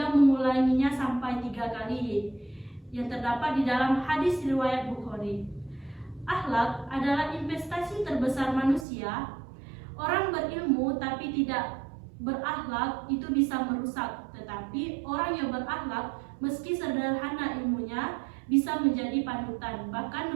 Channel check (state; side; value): drops out; left; at 8.8 s